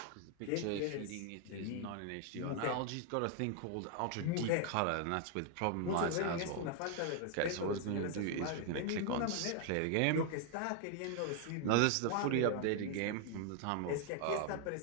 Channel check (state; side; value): different; both; correlation 0.00